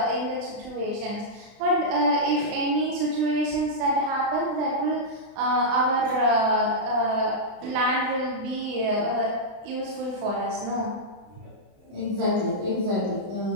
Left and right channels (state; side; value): late; left; 33 ms